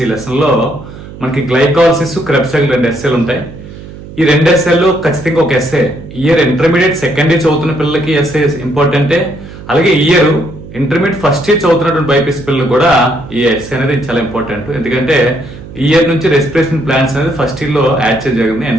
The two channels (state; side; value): noise; right; hum, 15 dB below the sound